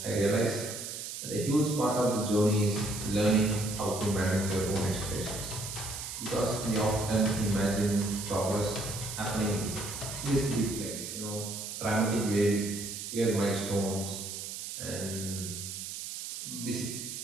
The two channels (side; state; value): right; noise; hiss, 7 dB below the sound